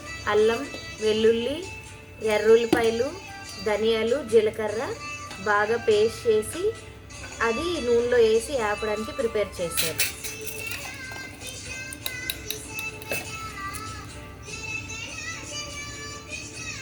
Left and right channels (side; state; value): both; identical; correlation 1.00